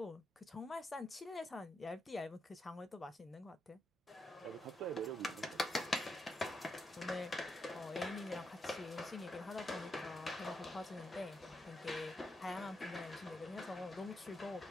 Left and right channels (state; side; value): normal; both; correlation 0.83